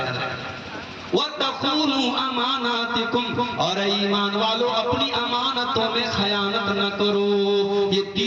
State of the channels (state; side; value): identical; both; correlation 1.00